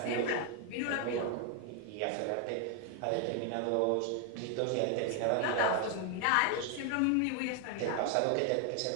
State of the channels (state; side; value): different; both; correlation 0.01